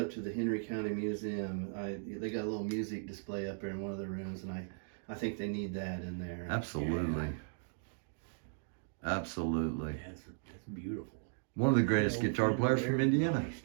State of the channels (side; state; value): left; silent; digital silence